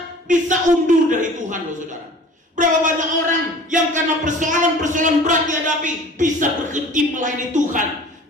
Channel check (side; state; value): both; normal; correlation 0.45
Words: bisa undur dari Tuhan, loh saudara. Berapa banyak orang yang karena persoalan-persoalan berat dihadapi bisa berhenti melayani Tuhan.